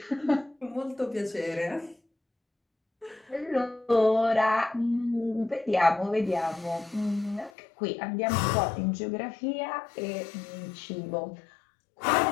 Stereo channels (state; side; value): drops out; right; at 7.5 s